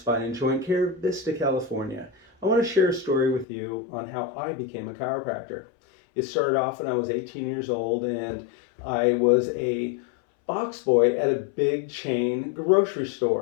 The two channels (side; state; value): right; drops out; at 3.5 s